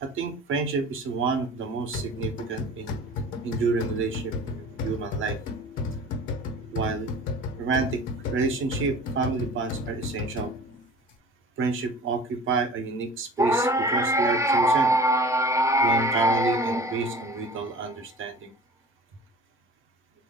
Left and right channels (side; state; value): both; normal; correlation 0.42